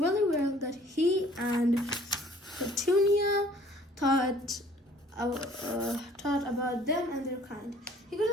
well that he and Petunia thought about them and their kind. He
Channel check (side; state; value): both; normal; correlation 0.55